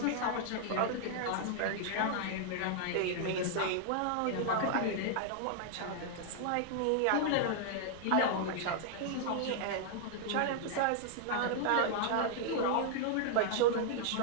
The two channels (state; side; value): different; both; correlation -0.01